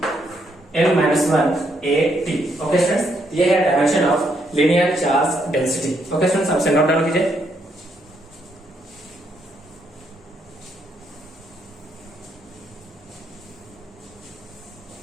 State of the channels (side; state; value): both; normal; correlation 0.75